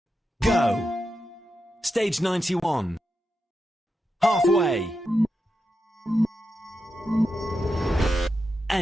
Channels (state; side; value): normal; both; correlation 0.88